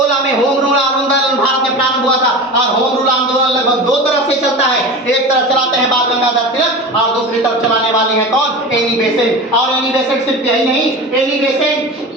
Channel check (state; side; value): normal; both; correlation 0.30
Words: में होम रूल आंदोलन भारत में प्रारंभ हुआ था। और होम रूल आंदोलन लगभग दो तरफ से चलता है। एक तरफ चलाते हैं बाल गंगाधर तिलक और दूसरी तरफ चलाने वाले हैं कौन? Annie Besant. और एनी बेसेंट सिर्फ यही नहीं, एनी बेसेंट